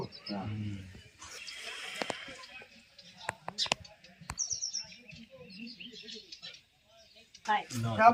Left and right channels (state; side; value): identical; both; correlation 1.00